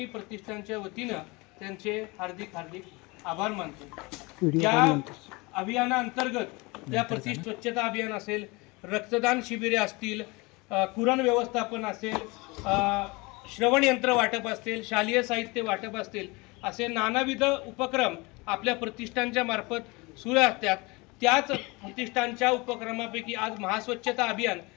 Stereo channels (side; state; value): right; quieter; 25.6 dB